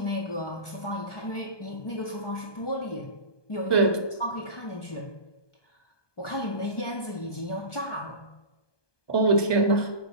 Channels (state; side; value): late; right; 1.2 ms